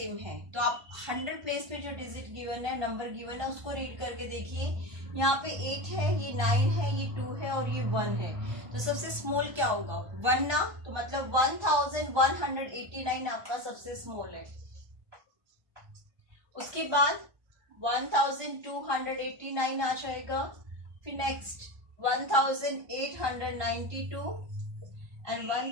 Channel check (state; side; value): late; left; 1.3 ms